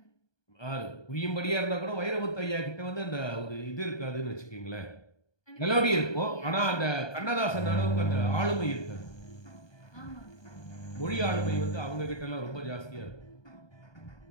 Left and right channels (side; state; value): right; late; 1.2 ms